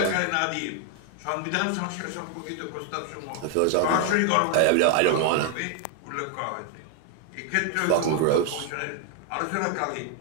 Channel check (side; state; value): both; different; correlation 0.00